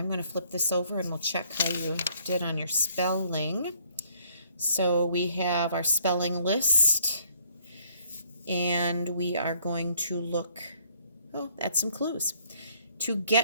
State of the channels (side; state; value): both; inverted; correlation -0.65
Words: going to flip this over and we'll check how you did on your spelling. So we have our spelling list, and we are going to look at some clues. To